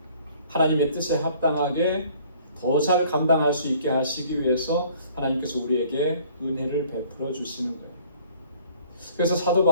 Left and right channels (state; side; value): inverted; both; correlation -0.56